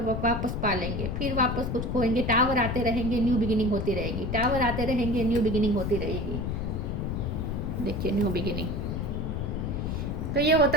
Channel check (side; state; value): left; noise; rumble, 2 dB below the sound